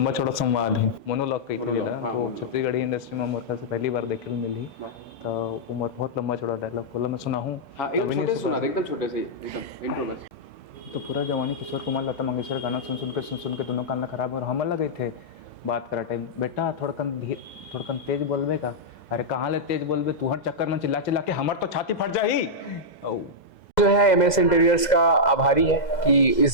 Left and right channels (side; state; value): right; late; 2.0 ms